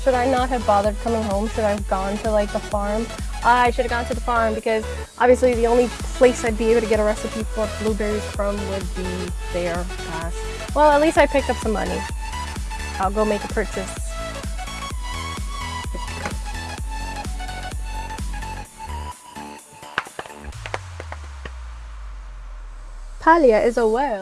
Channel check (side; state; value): both; identical; correlation 1.00